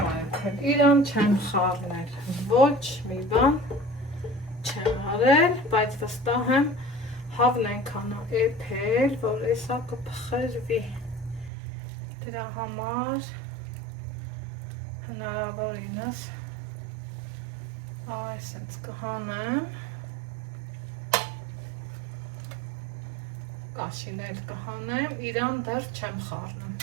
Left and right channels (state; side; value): drops out; left; at 11.5 s